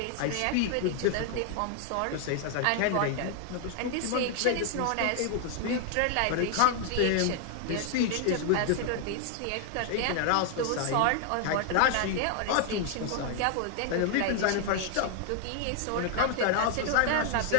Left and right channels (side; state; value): both; different; correlation 0.00